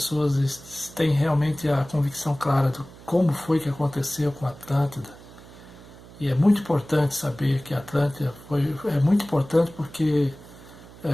têm realmente a convicção clara de como foi que aconteceu com Atlântida. E é muito importante saber que Atlântida é muito importante porque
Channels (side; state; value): right; noise; hum, 19 dB below the sound